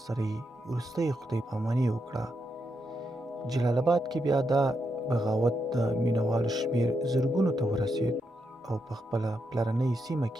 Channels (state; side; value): normal; both; correlation 0.83